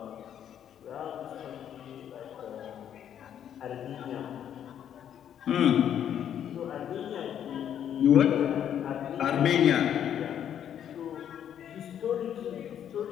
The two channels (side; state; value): right; quieter; 9.6 dB